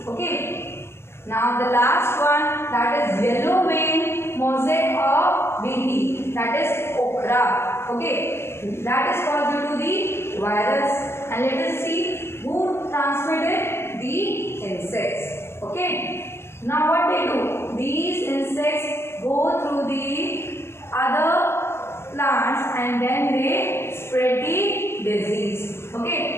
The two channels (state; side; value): late; right; 0.12 ms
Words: Okay. Now the last one, that is yellow vein mosaic of BT, that is okra. Okay, that is caused due to the virus, and let us see who transmitted the insects. Okay, now what they do? These insects go through the other plants and then they spread the disease.